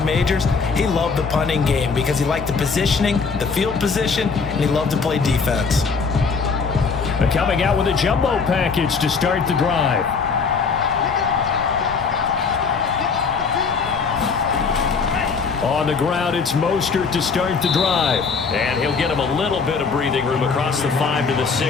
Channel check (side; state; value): right; quieter; 5.1 dB